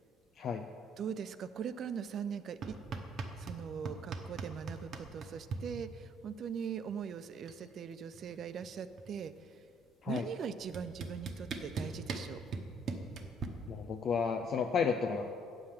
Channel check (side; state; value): both; normal; correlation 0.64